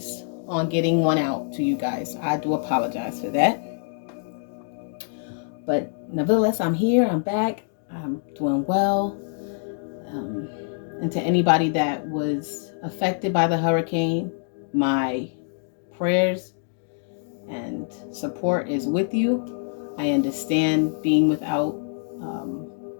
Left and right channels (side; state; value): right; silent; digital silence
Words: on getting one out to you guys. I do apologize for that. But nevertheless, I'm here, I'm back, I'm doing well. And to anybody that was affected by the hurricane, my prayers and support is with you. I understand being without